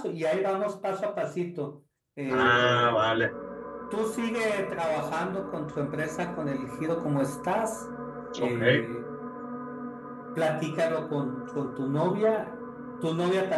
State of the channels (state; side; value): identical; both; correlation 1.00